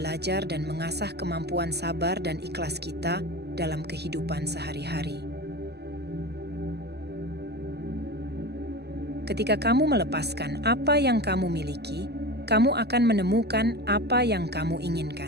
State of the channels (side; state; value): left; late; 0.48 ms